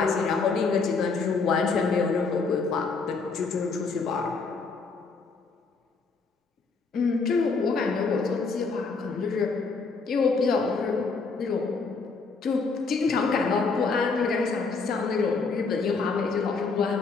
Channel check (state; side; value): quieter; right; 4.5 dB